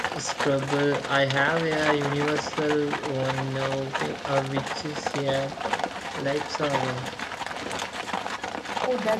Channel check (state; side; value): identical; both; correlation 1.00